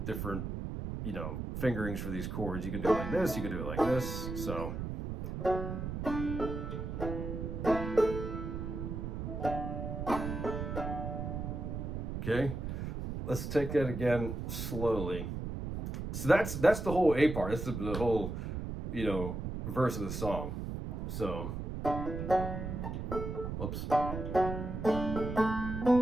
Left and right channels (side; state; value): right; noise; rumble, 4 dB below the sound